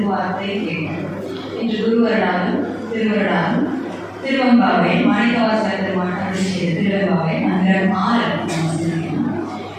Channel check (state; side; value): identical; both; correlation 1.00